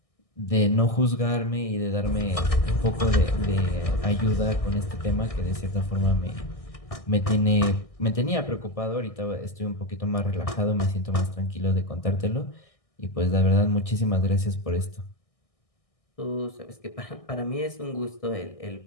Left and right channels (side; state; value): right; late; 1.6 ms